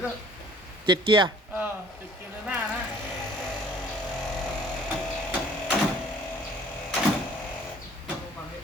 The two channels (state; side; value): normal; both; correlation 0.54